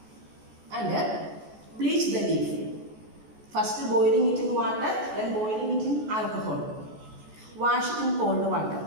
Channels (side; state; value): left; late; 14 ms